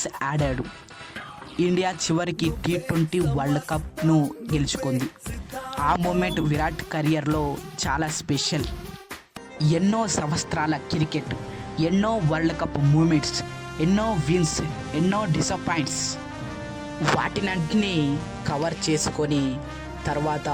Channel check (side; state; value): both; identical; correlation 1.00